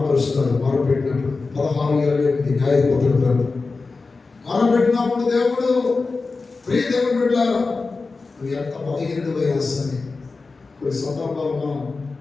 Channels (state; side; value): quieter; right; 4.0 dB